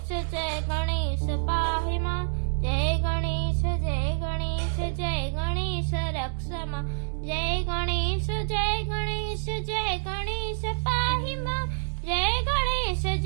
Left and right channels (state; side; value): silent; left; digital silence